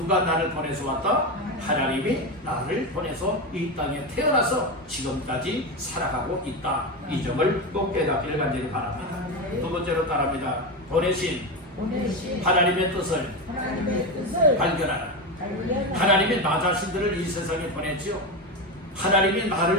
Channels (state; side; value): normal; both; correlation 0.16